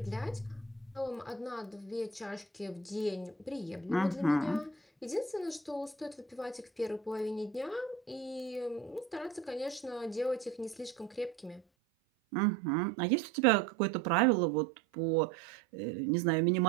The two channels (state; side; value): drops out; left; at 11.6 s